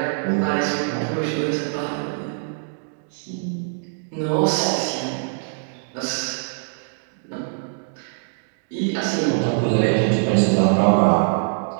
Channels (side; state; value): left; silent; digital silence